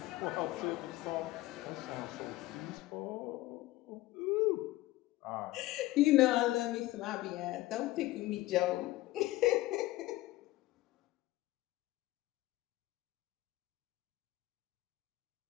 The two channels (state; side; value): quieter; right; 17.5 dB